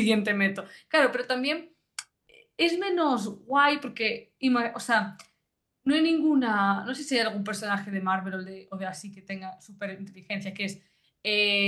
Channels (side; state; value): both; identical; correlation 1.00